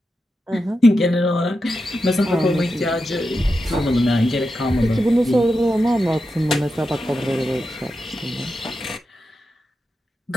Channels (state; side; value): normal; both; correlation 0.89